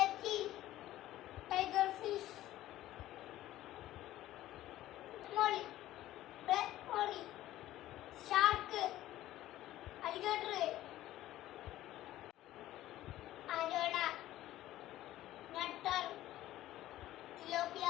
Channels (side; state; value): right; quieter; 14.6 dB